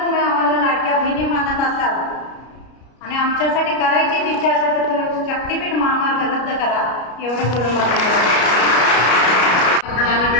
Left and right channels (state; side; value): late; right; 33 ms